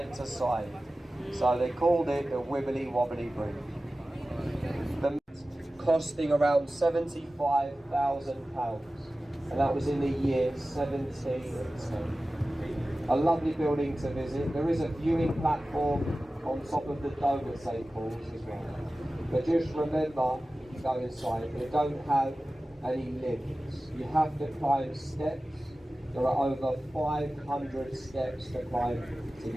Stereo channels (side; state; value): both; normal; correlation 0.96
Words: to side. So they called it the Wibbly Wobbly Bridge. The costing around £75,000, and that was in the year 1710. A lovely building to visit. There is a viewing platform on top of the dome at St Paul's as well. But just remember, if you go inside, they don't have any lifts. You have to climb steps. There are over 500 steps to climb to